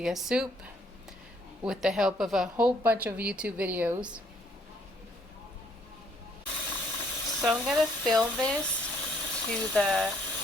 soup with the help of a whole bunch of YouTube videos. So I'm going to fill this to the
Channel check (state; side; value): normal; both; correlation 0.66